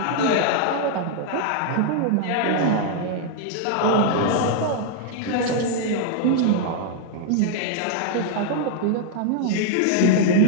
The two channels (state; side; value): different; both; correlation -0.01